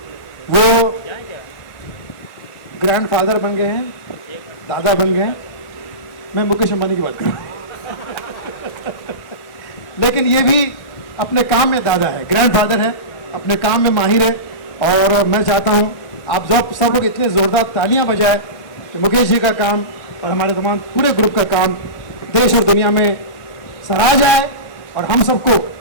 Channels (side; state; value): right; late; 1.6 ms